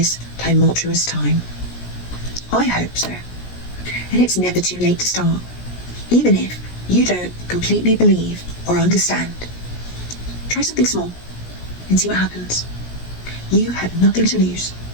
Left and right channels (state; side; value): late; right; 17 ms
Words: tumultuous time? I hope so. And it's never too late to start, even if you don't completely believe or understand. Try something small and see what happens. You have nothing to lose.